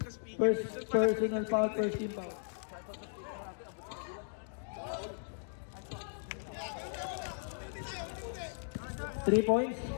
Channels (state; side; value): silent; right; digital silence